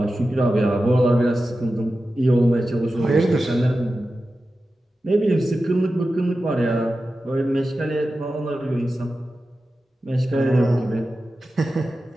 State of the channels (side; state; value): both; normal; correlation 0.93